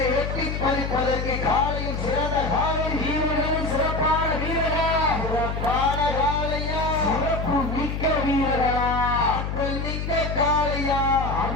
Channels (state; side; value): noise; left; hum, 3 dB below the sound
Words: எட்டி பறிப்பதற்கு காலையும் சிறந்த காலை, வீரர்களும் சிறப்பான வீரர்கள், சிறப்பான காலையா, சிறப்பு மிக்க வீரர்களா, ஆற்றல் மிக்க காலையா,